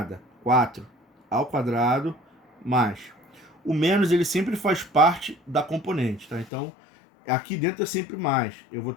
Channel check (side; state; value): right; drops out; at 6.5 s